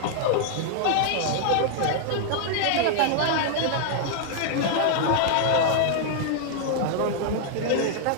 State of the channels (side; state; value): both; different; correlation -0.01